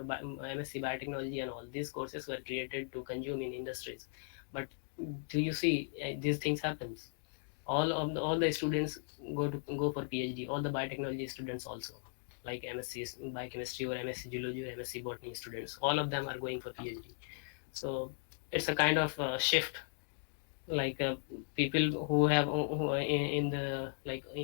MSc biotechnology and all these courses were created to consume in industries. But do you see these things happens, all the students go for PhD, all the biotechnology students also, like MSc biochemistry or MSc geology or MSc botany students, all of them are going for PhD. So it's a kind of shift, like people who have who are in the like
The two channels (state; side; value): silent; right; digital silence